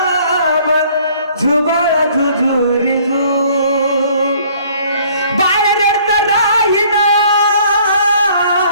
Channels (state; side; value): inverted; both; correlation -0.58